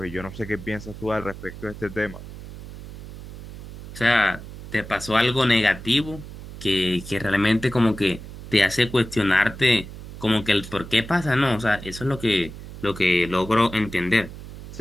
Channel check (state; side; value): noise; right; hum, 12 dB below the sound